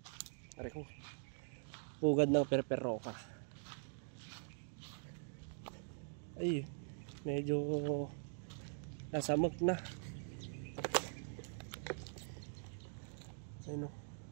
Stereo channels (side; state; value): left; silent; digital silence